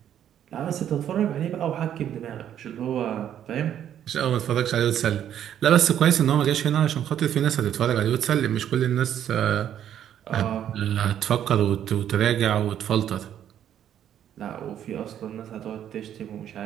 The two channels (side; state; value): left; quieter; 10.2 dB